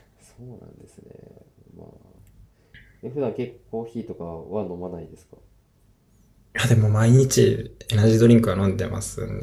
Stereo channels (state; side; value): identical; both; correlation 1.00